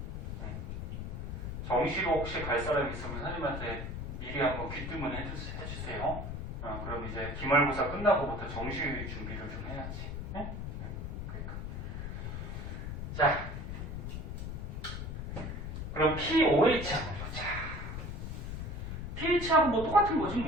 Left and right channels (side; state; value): left; noise; rumble, 5 dB below the sound